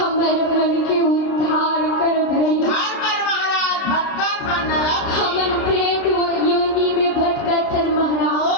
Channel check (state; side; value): late; right; 30 ms